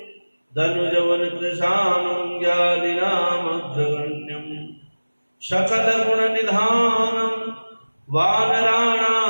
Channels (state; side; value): inverted; both; correlation -1.00